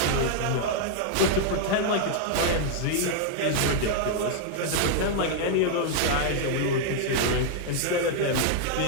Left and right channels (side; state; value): both; different; correlation 0.00